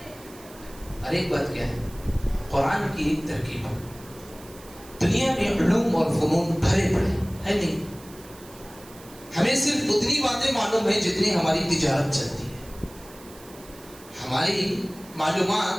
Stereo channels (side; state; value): right; noise; hiss, 21 dB below the sound